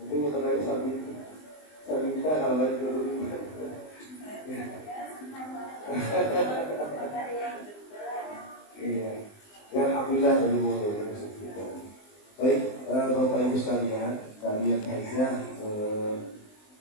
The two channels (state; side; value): late; right; 20 ms